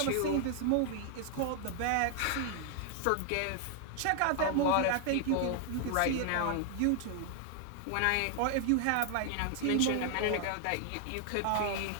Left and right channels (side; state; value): both; different; correlation 0.00